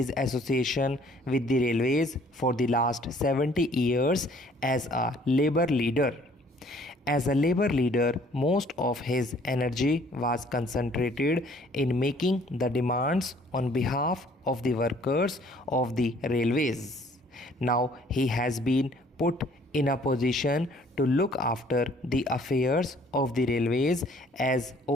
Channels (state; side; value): normal; both; correlation 0.58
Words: association with the railways for the last 70 years as a labor leader. As a labor leader, most of his energy was concentrated in making the demands on behalf of the workers of the railways. Now he has been put in a position to look after the affairs of the railways as